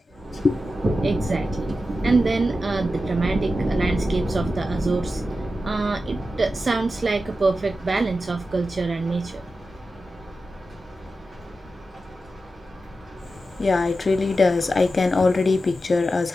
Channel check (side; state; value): both; normal; correlation 0.91